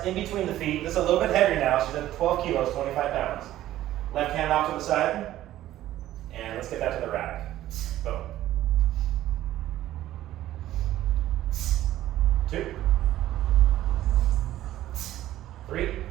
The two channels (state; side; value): quieter; left; 13.9 dB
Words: in between the feet. This is a little bit heavier now. She's at 12 kilos, 25 pounds. Left hand off to the side. And let's get that to the rack. Boom. 2. 3.